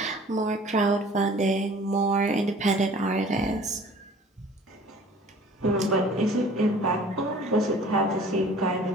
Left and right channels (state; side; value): normal; both; correlation 0.49